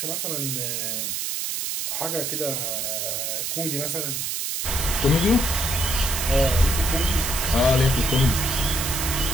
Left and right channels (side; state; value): right; noise; hiss, 2 dB below the sound